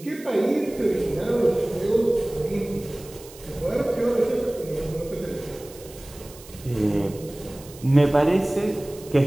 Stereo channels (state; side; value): noise; right; hiss, 19 dB below the sound